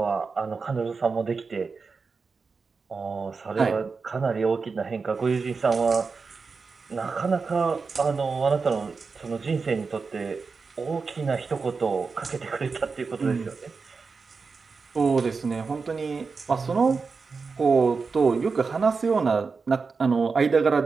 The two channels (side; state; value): left; quieter; 4.7 dB